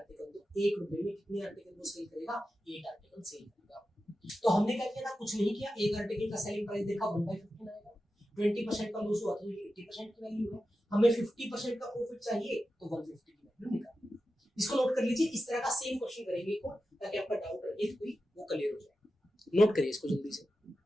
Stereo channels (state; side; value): normal; both; correlation 0.92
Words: तो 1 रुपए में कितने आर्टिकल वो सेल करेगा, 8 आर्टिकल सेल करेगा। तो हमने क्या किया था, कुछ नहीं किया, एक आर्टिकल का सेलिंग प्राइस देखा 1/15 आएगा, 20% का लॉस हुआ तो ये 80% की वैल्यू है, हमें 50% का प्रॉफिट चाहिए तो 150 की वैल्यू निकालनी है। इसको नोट कर लीजिए, इस तरह का सेम क्वेश्चन करेंगे को, ताकि आपका डाउट रहे कोई वो क्लियर हो जाए। नोट करिए इसको जल्दी से,